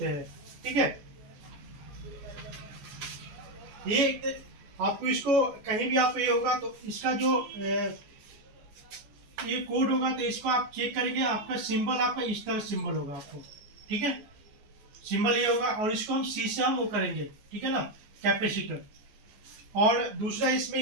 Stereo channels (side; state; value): left; late; 14 ms